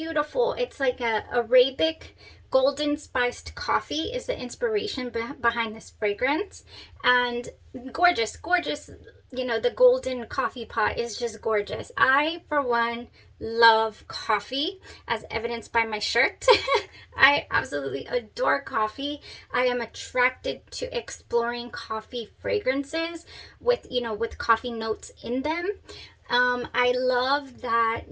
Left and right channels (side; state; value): both; identical; correlation 1.00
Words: It's like a Arabic golden spiced coffee is the inspiration behind this fragrance. And gorgeous, gorgeous. The golden coffee pot is just gorgeous. I, for one, love coffee, as evidenced by my shirt. I absolutely adore coffee. I am attracted to exploring coffee fragrances with coffee notes in them. I love that